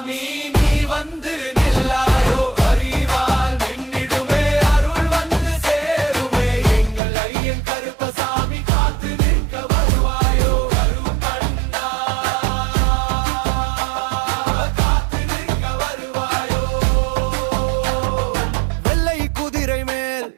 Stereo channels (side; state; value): left; drops out; at 7.0 s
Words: நீ வந்து நில்லாயோ. அறிவால் நின்னிடுமே, அருள் வந்து சேருமே. எங்கள் ஐயன் கருப்பசாமி.